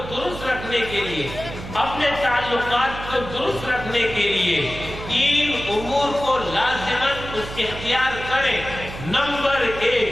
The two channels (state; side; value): noise; right; hum, 10 dB below the sound